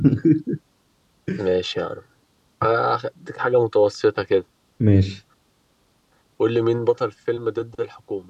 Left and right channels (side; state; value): both; identical; correlation 1.00